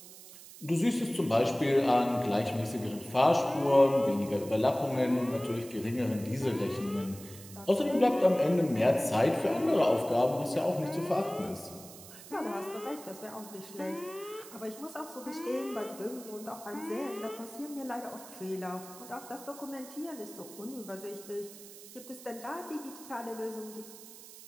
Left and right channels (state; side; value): noise; right; hiss, 17 dB below the sound